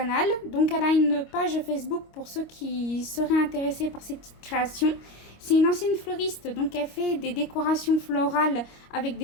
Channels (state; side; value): late; right; 25 ms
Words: Donc elle a une page Facebook pour ceux qui seraient intéressés par ces petites créations. C'est une ancienne fleuriste, donc elle fait des décorations florales avec